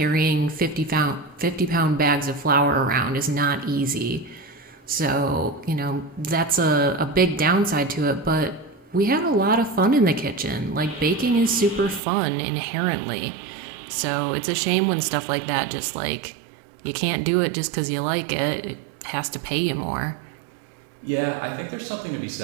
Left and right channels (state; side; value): drops out; left; at 12.0 s